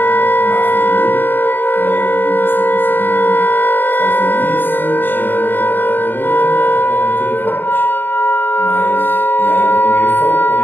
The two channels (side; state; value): right; late; 0.093 ms